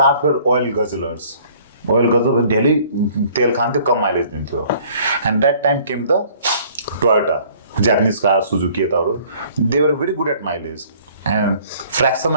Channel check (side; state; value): both; inverted; correlation -0.55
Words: were oil guzzlers ओइलको चाहिँ डेली तेल खान्थ्यो, कम माइलेज दिन्थ्यो. And that time came the Toyota, Japanese car, Suzuki यताहरू. They were very good at mileage and fraction